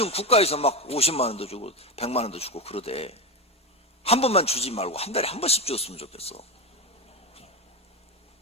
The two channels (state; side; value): normal; both; correlation 0.15